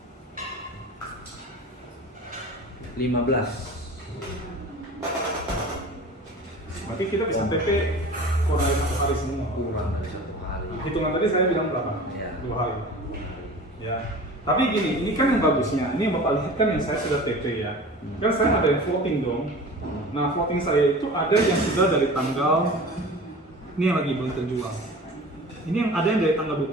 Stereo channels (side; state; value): both; normal; correlation 0.38